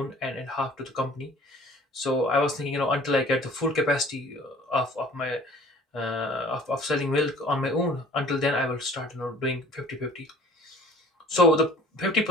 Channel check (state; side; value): normal; both; correlation 0.50